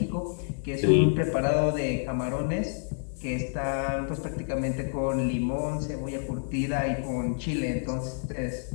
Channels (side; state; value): right; silent; digital silence